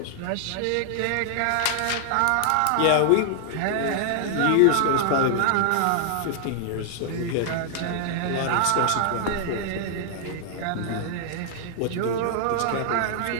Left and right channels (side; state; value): both; different; correlation 0.00